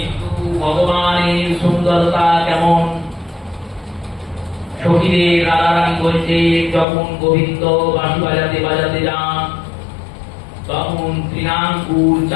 ভগবানের সুন্দরতা কেমন? সখীদের রাধারানী বলছে যখন গোবিন্দ বাঁশি বাজাতে বাজাতে যান, তখন তৃণাঙ্কুর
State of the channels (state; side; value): drops out; right; at 6.9 s